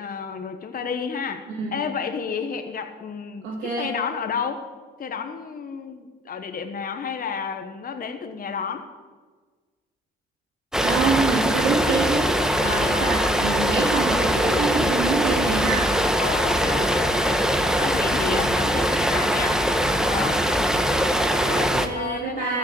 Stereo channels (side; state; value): both; normal; correlation 0.64